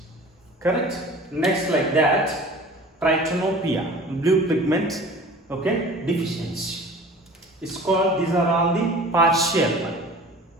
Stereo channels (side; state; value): both; normal; correlation 0.43